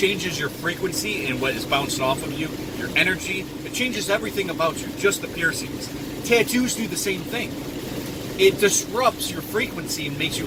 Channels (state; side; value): identical; both; correlation 1.00